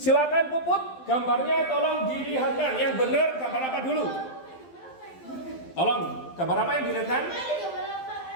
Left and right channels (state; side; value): late; right; 12 ms